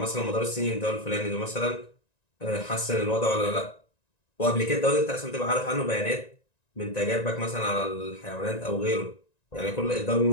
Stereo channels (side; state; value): right; late; 1.9 ms